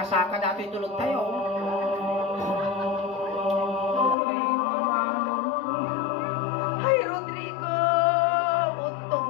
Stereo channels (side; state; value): right; drops out; at 4.2 s